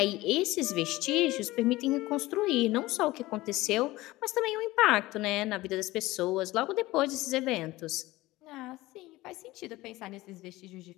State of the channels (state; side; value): quieter; right; 18.7 dB